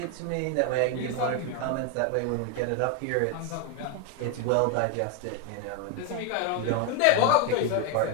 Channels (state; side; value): different; both; correlation 0.01